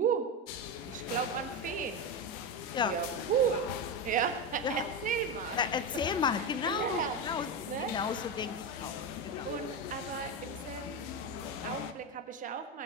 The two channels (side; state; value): both; normal; correlation 0.14